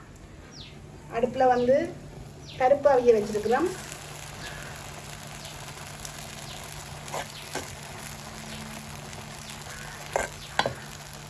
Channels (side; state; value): both; identical; correlation 1.00